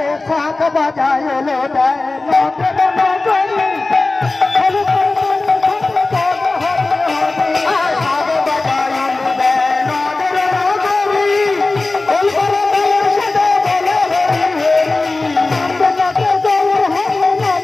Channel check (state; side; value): quieter; right; 3.3 dB